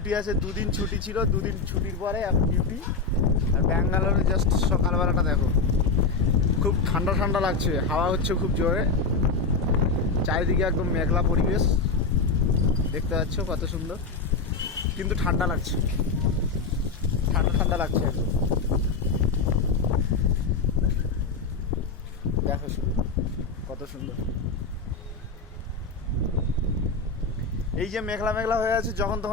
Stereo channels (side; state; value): right; quieter; 4.2 dB